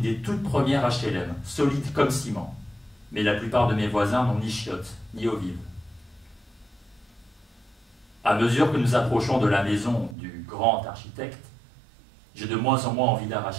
des toutes premières HLM, solide comme ciment. Mais la plupart de mes voisins n'ont ni chiottes, ni eau vive. À mesure que nous approchons de la maison du grand architecte, j'ai de moins en moins envie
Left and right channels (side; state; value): left; drops out; at 10.2 s